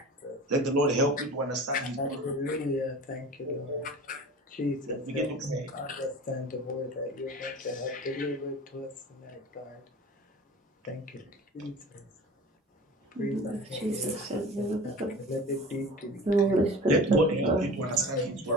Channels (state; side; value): normal; both; correlation 0.37